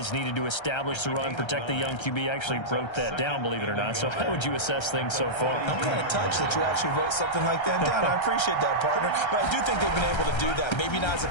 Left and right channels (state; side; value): late; right; 1.3 ms